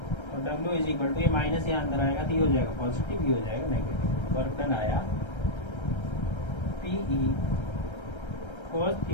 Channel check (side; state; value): right; late; 1.3 ms